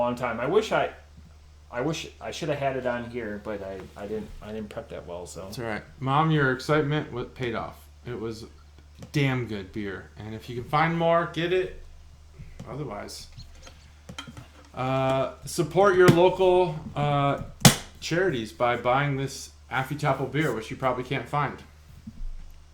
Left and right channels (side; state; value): both; identical; correlation 1.00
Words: time. I wish I should have had it on here, but I didn't prep that well. So that's all right, Mom. Your excitement paid off. It was damn good beer, and if you can find more, get it. Otherwise, support your local charities by buying this Affy Tapple beer, which you probably can't find.